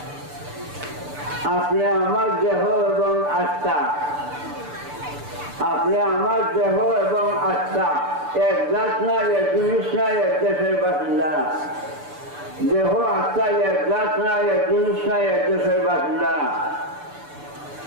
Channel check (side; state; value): left; late; 6.8 ms